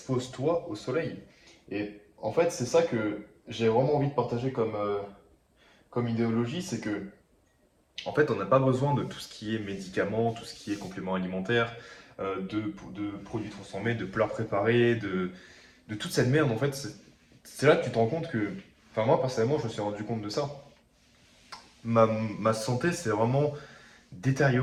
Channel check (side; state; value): both; identical; correlation 1.00